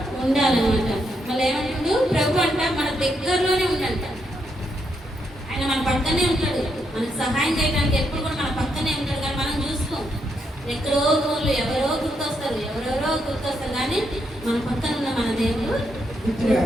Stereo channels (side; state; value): both; normal; correlation 0.79